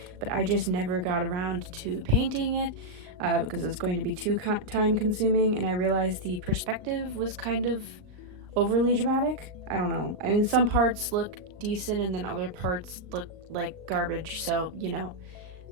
but I just never got around to painting it because it's going to be too time consuming, and I realized the perspective was kind of overly dramatic. I don't know. I mean, some parts look decent and then other parts look like garbage, so, you know,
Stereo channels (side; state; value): left; late; 38 ms